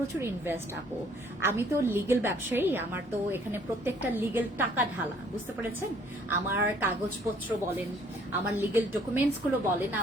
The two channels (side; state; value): both; normal; correlation 0.61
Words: ইনভেস্ট আপু। আমি তো লিগেল ব্যবসায়ী, আমার তো এখানে প্রত্যেকটা লিগেল টাকা ঢালা, বুঝতে পেরেছেন? আমার কাগজপত্র বলেন, আমার লিগেল ডকুমেন্টস গুলো বলেন,